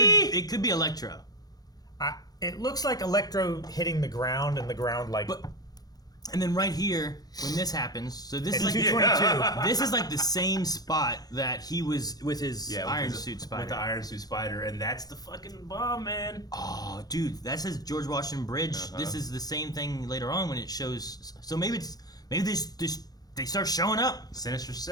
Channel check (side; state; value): right; late; 0.19 ms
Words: It could be Electro. it looks like Electro hitting the ground and the ground like. But and then right here, when this happens, so this It's is like 222. this is like the same spot that he was with his Yeah, with Iron his- Suit Spider. With the Iron Suit Spider, and that's the fucking bomb, man. Oh, dude, that says George Washington Bridge. Uh-huh. This is the same thing later on when it shows. So maybe they start showing up. Sinister